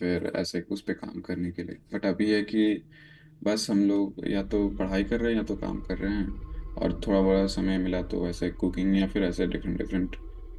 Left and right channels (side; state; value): both; identical; correlation 1.00